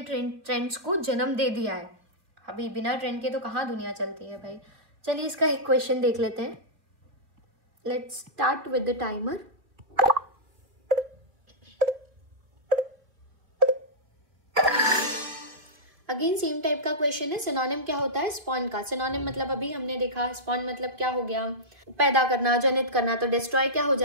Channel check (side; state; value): left; late; 2.5 ms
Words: ट्रेंड्स को जन्म दे दिया है। अभी बिना ट्रेंड के तो कहाँ दुनिया चलती है। चलिए इसका एक क्वेश्चन देख लेते हैं। Let's start with the timer. Again same type का क्वेश्चन है। सिनोनिम क्या होता है? स्पॉन का। सिनोनिम मतलब अभी हमने देखा, स्पॉन मतलब क्या हो गया? पैदा करना, जनित करना। तो डिस्ट्रॉय क्या हो